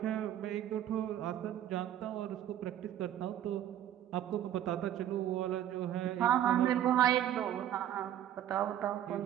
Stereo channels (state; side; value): quieter; left; 11.2 dB